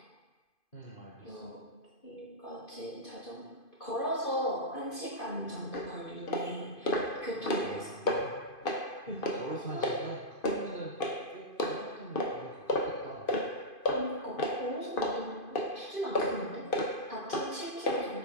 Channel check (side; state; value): right; late; 2.5 ms